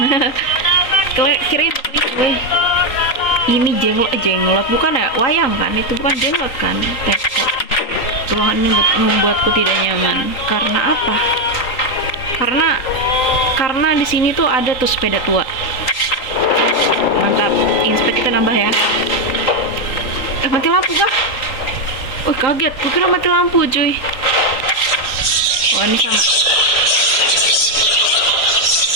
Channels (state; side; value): late; right; 3.9 ms